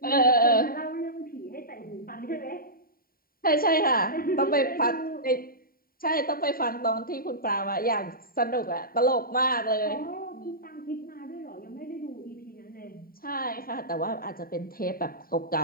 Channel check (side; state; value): right; late; 0.43 ms